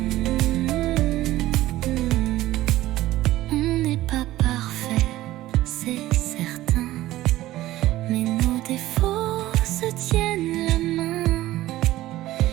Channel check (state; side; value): quieter; left; 15.8 dB